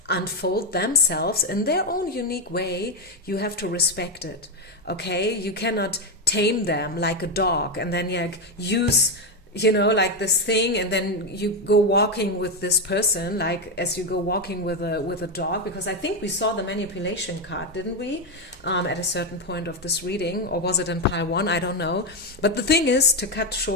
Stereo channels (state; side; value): normal; both; correlation 0.08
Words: unfold themselves in their own unique way, you have to respect it, okay? You cannot tame them like a dog and then use, like this thing, and then you go walking with this person like as you go walking with a dog. Because I think we saw the manipulation card, didn't we, at a certain point of this reading, or was it in pile 1? I don't know. But the thing is, to cut